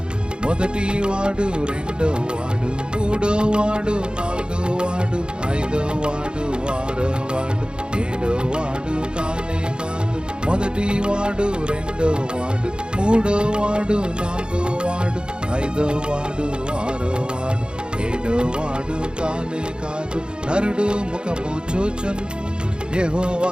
మొదటి వాడు, రెండో వాడు, మూడో వాడు, నాలుగో వాడు, ఐదో వాడు, ఆరో వాడు, ఏడో వాడు కానే కాదు. మొదటి వాడు, రెండో వాడు, మూడో వాడు, నాలుగో వాడు, ఐదో వాడు, ఆరో వాడు, ఏడో వాడు కానే కాదు. నరుడు ముఖము చూచున్, యెహోవా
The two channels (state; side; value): late; left; 0.050 ms